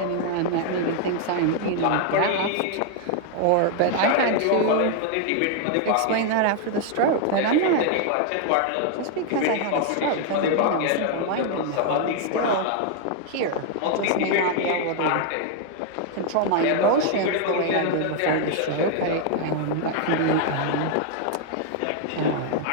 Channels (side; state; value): both; different; correlation 0.00